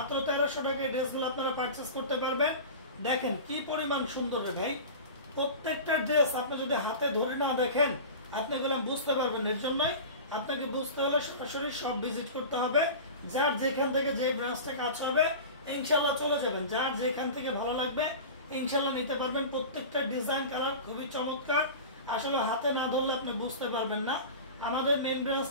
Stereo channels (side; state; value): both; inverted; correlation -0.32